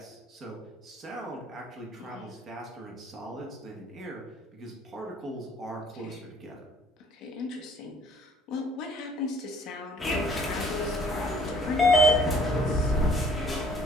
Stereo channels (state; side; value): normal; both; correlation 0.58